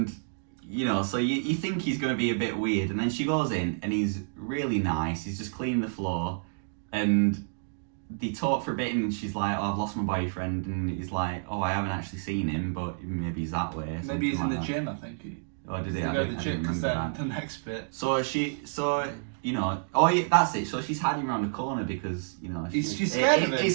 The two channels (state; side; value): silent; left; digital silence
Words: so you think he's going to be a bit weird, and then she goes in, and he's really nice. He's just cleaning the floor, and they talk for a bit, and she's like, "Oh, I've lost my boyfriend," and he's like, "Oh, I haven't actually seen him, but maybe he's that way." Maybe he's in like the that. gym, I think. Oh, did he? They I go to didn't the gym because remember then that. the next bit. Oh yeah, that's it. So she's hiding around the corner because She's scared of him.